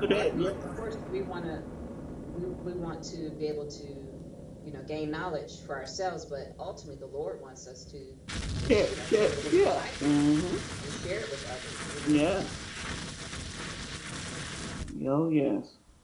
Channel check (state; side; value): identical; both; correlation 1.00